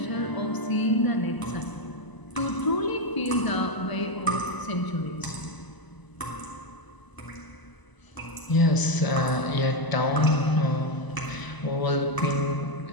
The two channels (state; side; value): late; right; 1.0 ms